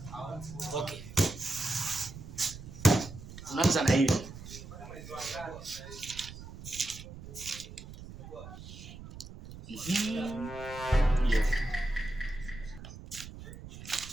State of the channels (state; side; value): noise; right; rumble, 13 dB below the sound